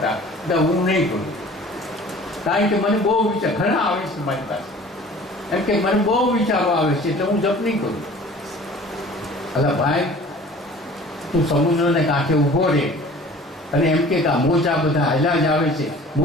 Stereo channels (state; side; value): normal; both; correlation 0.46